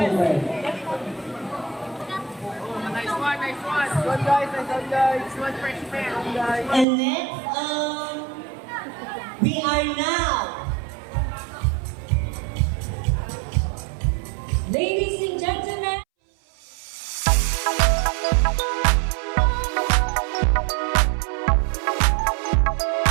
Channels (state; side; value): drops out; left; at 6.9 s